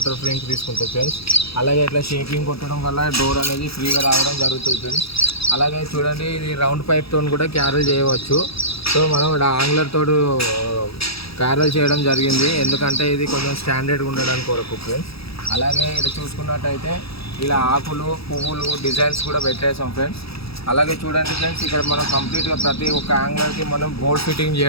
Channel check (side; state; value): right; late; 0.77 ms